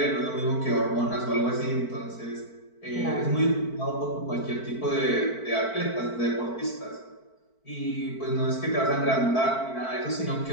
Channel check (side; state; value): right; late; 4.5 ms